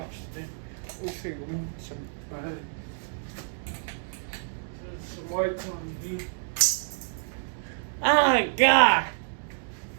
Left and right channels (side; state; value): left; silent; digital silence